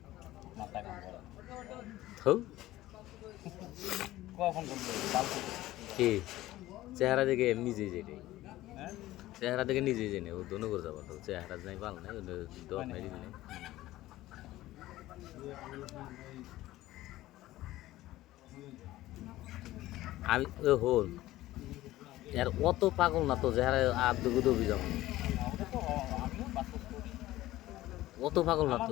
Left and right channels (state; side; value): quieter; right; 16.1 dB